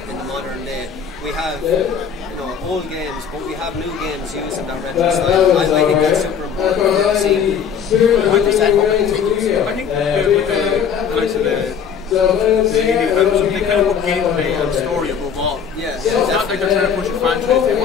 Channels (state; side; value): quieter; right; 7.3 dB